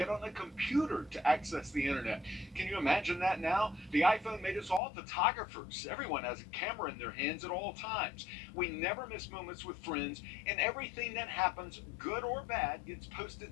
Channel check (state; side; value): drops out; right; at 4.8 s